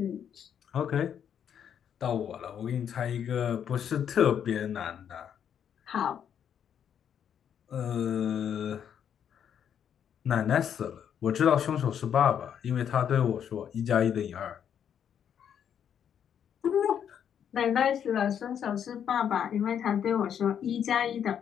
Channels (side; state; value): right; quieter; 8.6 dB